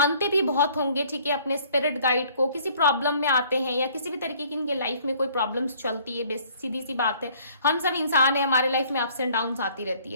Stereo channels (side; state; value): both; inverted; correlation -0.57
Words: भी बहुत होंगे, ठीक है, अपने स्पिरिट गाइड को। किसी प्रॉब्लम में आते हैं या किसी भी तरीके की इनके लाइफ में कोई प्रॉब्लम्स चलती है, सीधी सी बात है, हम सब इंसान है, हमारे लाइफ में अप्स एंड डाउन्स आती रहती